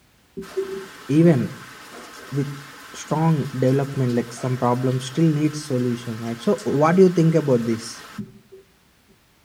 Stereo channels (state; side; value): identical; both; correlation 1.00